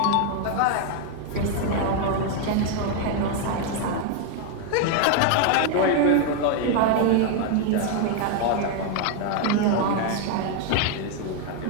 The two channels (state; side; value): different; both; correlation 0.00